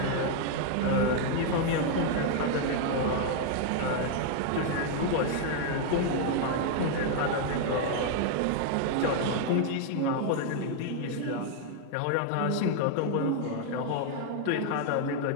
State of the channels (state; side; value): different; both; correlation 0.00